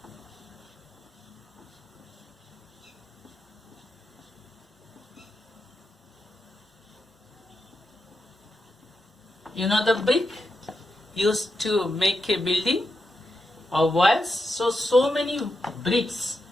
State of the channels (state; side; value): normal; both; correlation 0.86